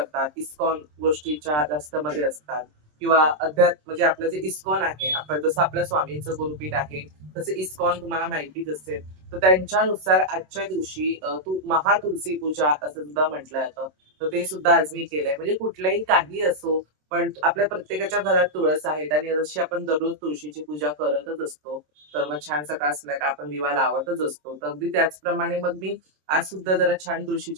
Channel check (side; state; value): left; late; 27 ms